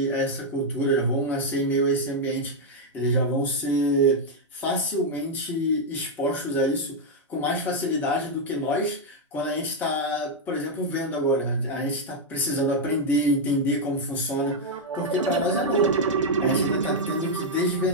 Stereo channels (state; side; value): normal; both; correlation 0.00